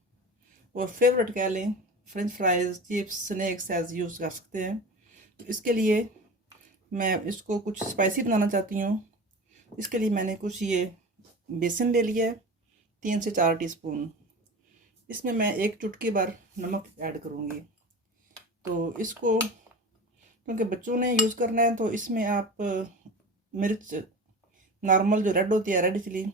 और फेवरेट कह लें french fries, chips, snacks as use कर सकते हैं। तो इसके लिए मैं इसको कुछ स्पाइसी बनाना चाहती हूँ। इसके लिए मैंने कुछ ये बेसन ले लिया है, 3 से 4 टीस्पून। इसमें मैं 1 चुटकी भर नमक ऐड करूँगी। तो इसको क्योंकि बच्चों ने यूज़ करना है तो इसमें आप मिर्च नॉर्मल जो रेड होती है, रेड चिली,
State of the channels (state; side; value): normal; both; correlation 0.33